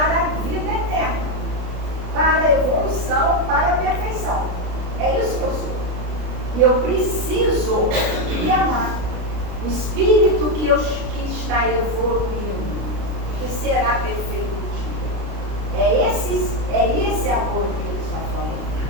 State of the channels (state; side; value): late; left; 33 ms